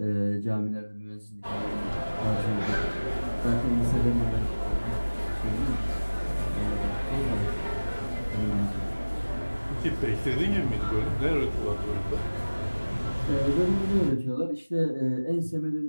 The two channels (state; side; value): inverted; both; correlation -1.00